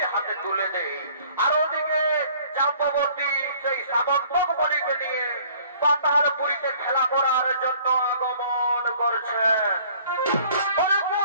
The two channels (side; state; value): both; inverted; correlation -0.55